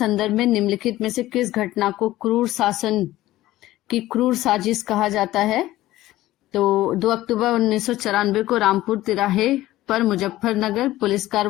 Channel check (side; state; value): right; quieter; 15.9 dB